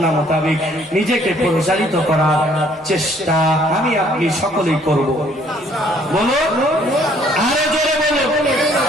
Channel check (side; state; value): both; normal; correlation 0.61